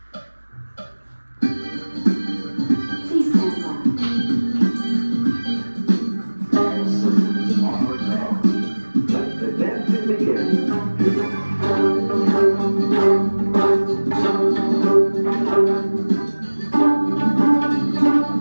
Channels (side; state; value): both; inverted; correlation -1.00